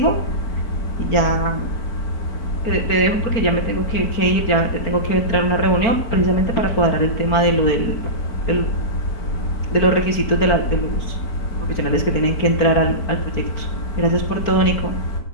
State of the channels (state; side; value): late; right; 4.4 ms